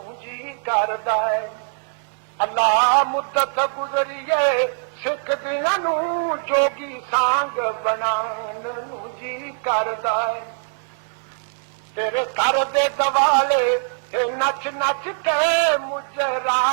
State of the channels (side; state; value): left; silent; digital silence